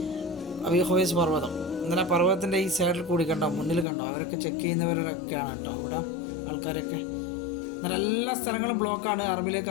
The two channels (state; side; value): drops out; right; at 3.9 s